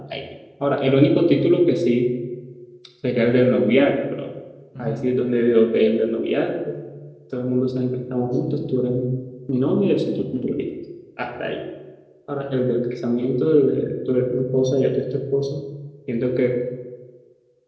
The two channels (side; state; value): both; identical; correlation 1.00